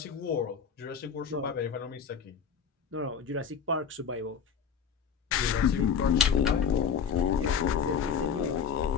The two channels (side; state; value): right; quieter; 6.8 dB